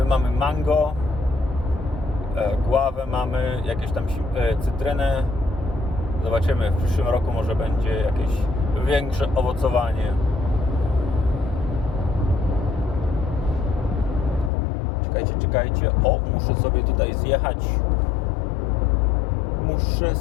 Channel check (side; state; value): right; drops out; at 14.5 s